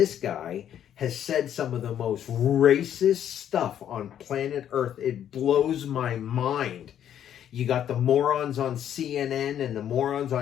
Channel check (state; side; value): quieter; right; 10.1 dB